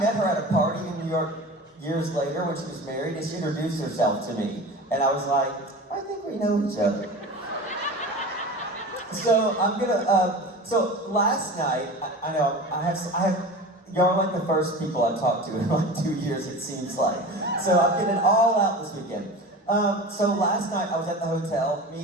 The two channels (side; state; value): both; normal; correlation 0.33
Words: met her at a party in New York years later when she was married, and she introduced herself to me. And I was like, I think we know each other. So so last night, I know, I have, y'all are like the first people I've talked to in like 2 years, it seems like. So I'm getting it all out this weekend. So last night I was at the hotel.